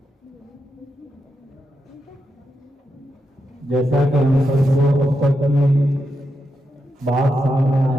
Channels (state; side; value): normal; both; correlation 0.85